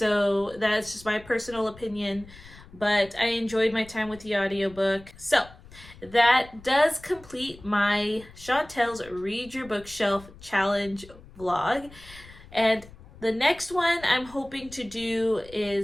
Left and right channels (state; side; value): noise; left; rumble, 20 dB below the sound